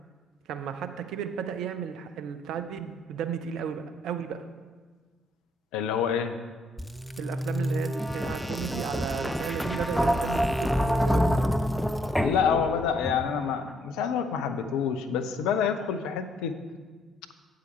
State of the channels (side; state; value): both; normal; correlation 0.68